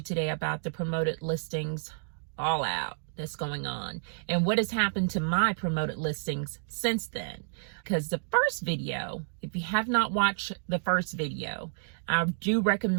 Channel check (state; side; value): silent; left; digital silence